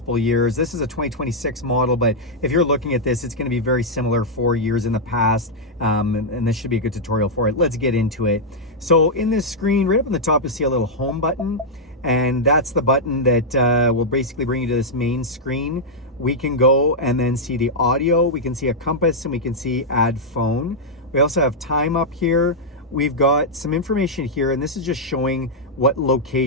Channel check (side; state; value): both; normal; correlation -0.06